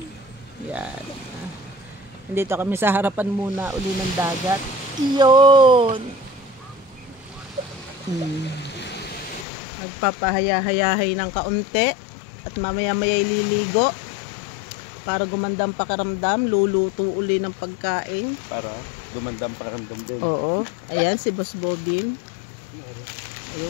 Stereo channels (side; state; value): right; drops out; at 9.5 s